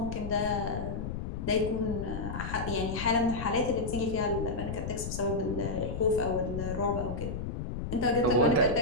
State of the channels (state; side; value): noise; left; rumble, 5 dB below the sound